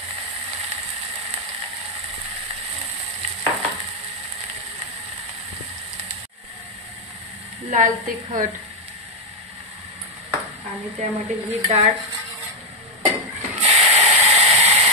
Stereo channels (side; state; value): both; normal; correlation 0.01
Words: लाल तिखट आणि त्यामध्ये ही डाळ